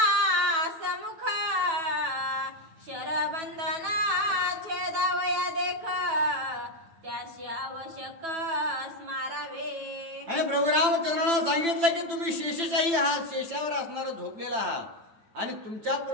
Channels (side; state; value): left; late; 8.9 ms